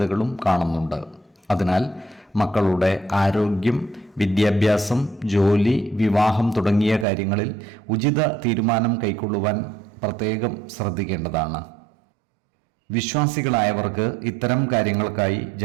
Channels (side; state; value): left; drops out; at 7.1 s